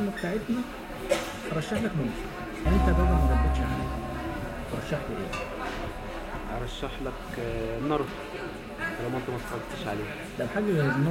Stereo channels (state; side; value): identical; both; correlation 1.00